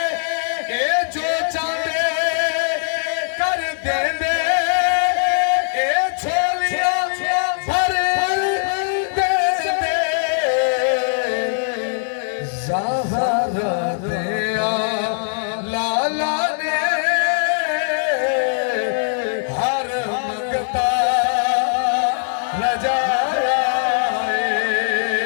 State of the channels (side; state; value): right; silent; 58 dB below the other